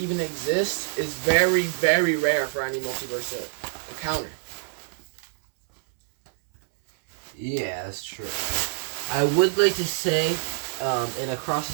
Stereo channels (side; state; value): left; silent; 61 dB below the other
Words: exist, is very, very rare for any multiverse to encounter. Yeah, that's true. I would like to say, in Across